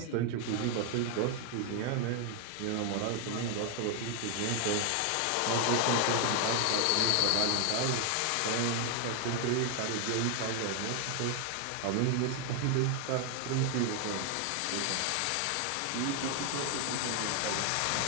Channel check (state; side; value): different; both; correlation 0.00